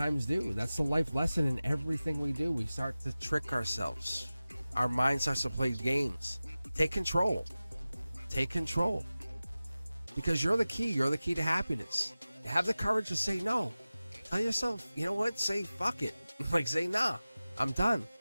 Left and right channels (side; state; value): both; inverted; correlation -0.96